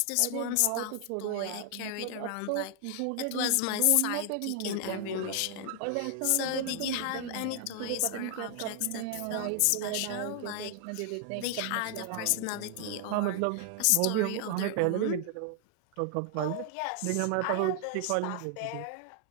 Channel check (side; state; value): both; different; correlation 0.00